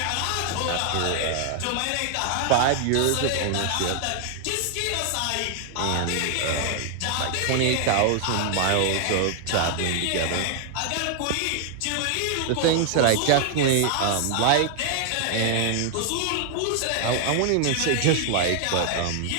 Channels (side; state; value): both; different; correlation 0.00